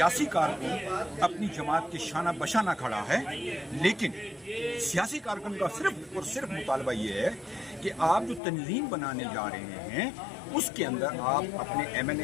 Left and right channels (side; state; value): right; drops out; at 8.4 s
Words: کارکن اپنی جماعت کے شانہ بشانہ کھڑا ہے. لیکن سیاسی کارکن کا صرف اور صرف مطالبہ یہ ہے کہ آپ جو تنظیم بنانے جا رہے ہیں اس کے اندر آپ اپنے M N